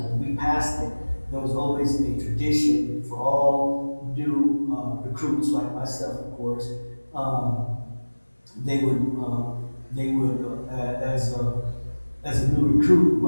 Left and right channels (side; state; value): both; inverted; correlation -1.00